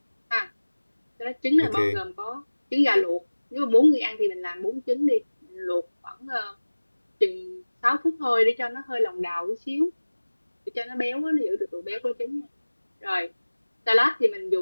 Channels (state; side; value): inverted; both; correlation -1.00